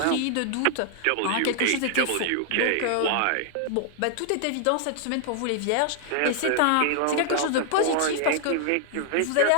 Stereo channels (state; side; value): different; both; correlation 0.00